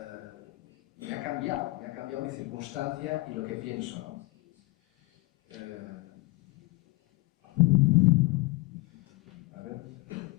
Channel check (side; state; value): right; quieter; 22.5 dB